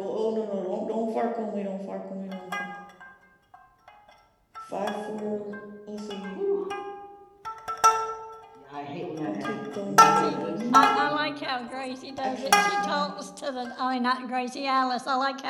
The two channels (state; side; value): identical; both; correlation 1.00